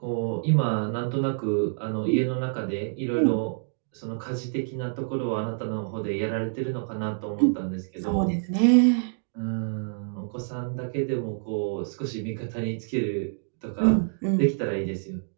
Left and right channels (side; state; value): left; silent; digital silence